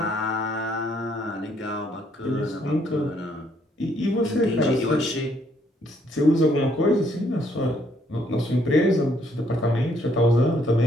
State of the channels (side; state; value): both; normal; correlation 0.69